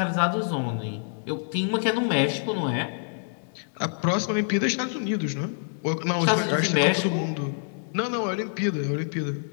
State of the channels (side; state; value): right; silent; digital silence